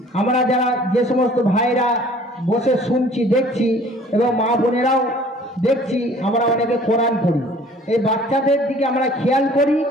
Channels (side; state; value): both; normal; correlation 0.52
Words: আমরা যারা যে সমস্ত ভাইরা বসে শুনছি দেখছি এবং মা বোনেরাও দেখছি, আমরা অনেকে কোরআন পড়ি, এই বাচ্চাদের দিকে আমরা খেয়াল করি